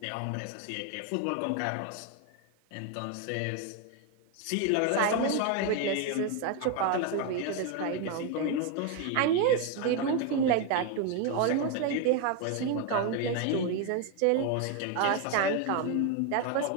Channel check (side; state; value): both; different; correlation 0.01